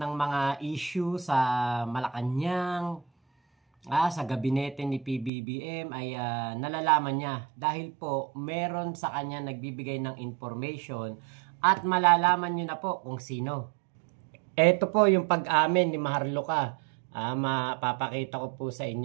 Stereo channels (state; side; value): drops out; left; at 5.3 s